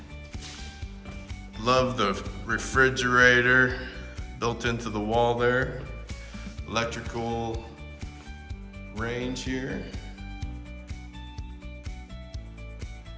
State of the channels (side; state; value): both; identical; correlation 1.00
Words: Love the refrigerator built into the wall there. Electrical range here.